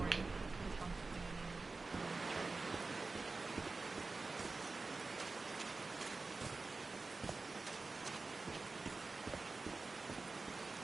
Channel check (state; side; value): quieter; left; 3.7 dB